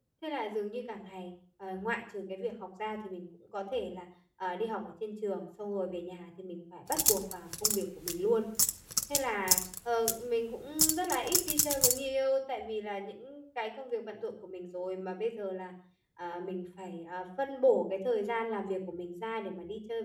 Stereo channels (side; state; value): both; identical; correlation 1.00